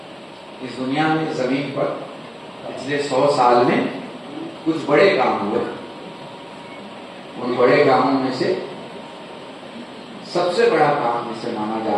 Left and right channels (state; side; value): identical; both; correlation 1.00